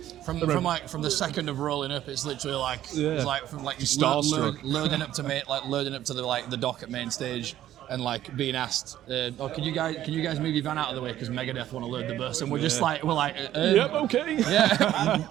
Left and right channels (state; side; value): quieter; left; 12.6 dB